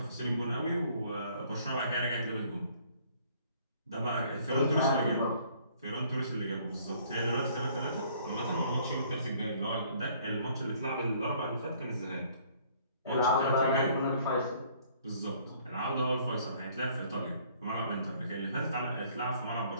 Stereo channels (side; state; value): both; inverted; correlation -0.60